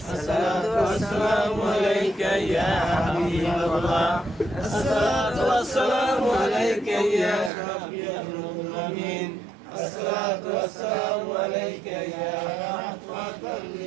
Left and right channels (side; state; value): left; drops out; at 7.5 s